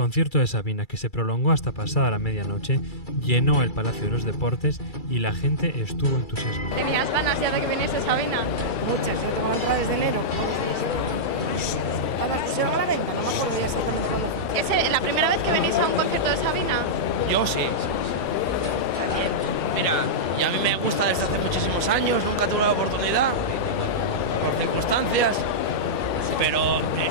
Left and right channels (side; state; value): right; late; 2.3 ms